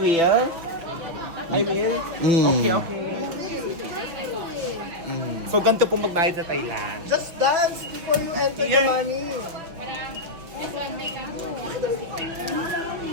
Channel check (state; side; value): late; left; 6.0 ms